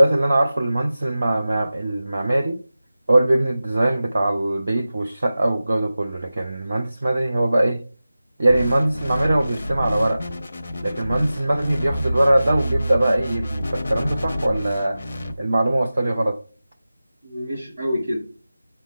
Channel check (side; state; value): both; inverted; correlation -0.95